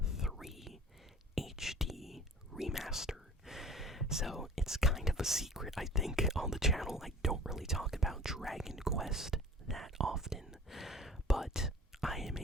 III HD Remaster. So it's kind of a secret, I think, on the channel. I don't really talk about Dragon Quest that often, but I am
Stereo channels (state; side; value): normal; both; correlation 0.44